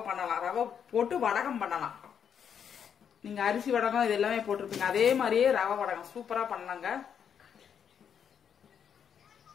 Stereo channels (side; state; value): right; quieter; 7.9 dB